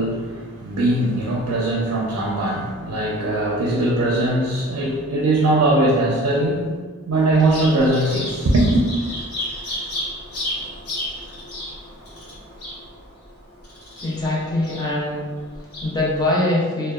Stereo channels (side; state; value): both; normal; correlation 0.45